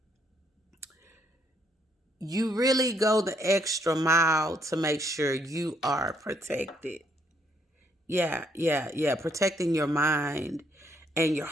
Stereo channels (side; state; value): both; normal; correlation 0.71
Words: you really go the extra mile to make sure you are protected. Yeah, yeah, yeah. Protecting your mind and your